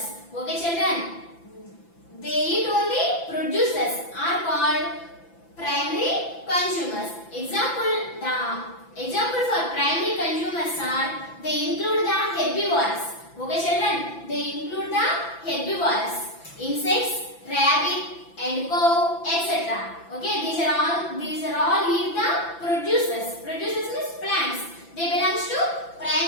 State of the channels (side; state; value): right; late; 5.9 ms